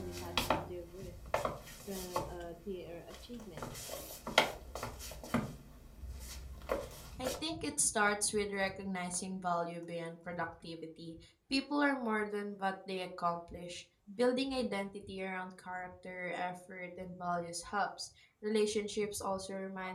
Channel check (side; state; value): both; identical; correlation 1.00